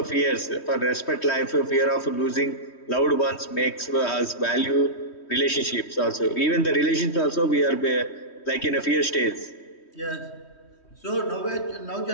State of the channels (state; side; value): late; right; 3.1 ms